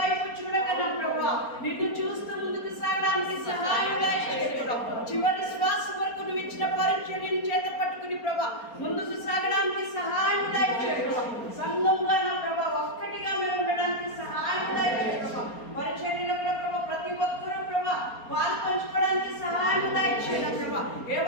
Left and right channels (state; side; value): late; right; 4.3 ms